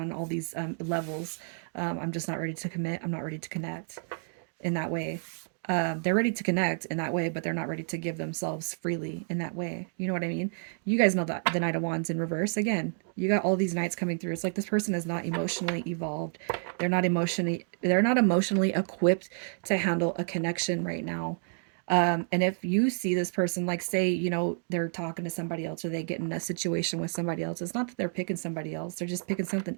all these levels, I'm just not ready to commit. I'm not ready to connect in that way. They're ready to connect in that way, but they're not ready to give themselves freely in that way. You know what I mean? You guys know that the Knight of Wands in reverse. Again, you got all these knights coming through. It's like this person is not emotionally evolved. They're not emotionally equipped to handle a connection right now. And if you see this person, like say, they're talking to somebody else or they get in a situation with somebody else, it's not that they're picking somebody else. They're just picking something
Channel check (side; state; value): left; silent; digital silence